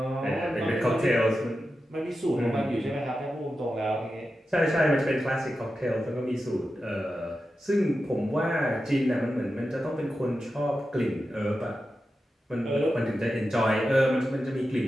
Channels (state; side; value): normal; both; correlation 0.91